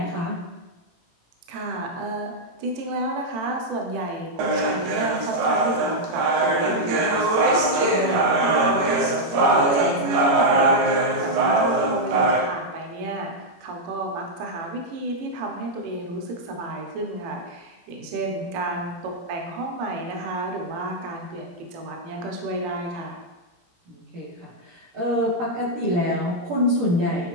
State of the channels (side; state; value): left; late; 18 ms